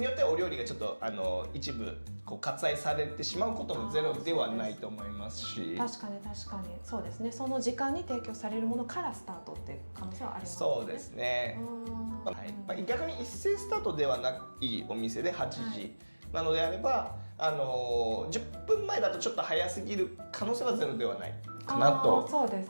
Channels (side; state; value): both; inverted; correlation -1.00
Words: よってはお料理がちょっと一部割愛されてしまうこともゼロではないと思いますし、確かにそうですね。その時間に提供されるものからスタートっていう可能性はありますね。そうですね、はい、逆に一斉スタートではないお店で8時なのであれば、10分前だとちょっと早すぎる可能性はゼロではないかなと。そうで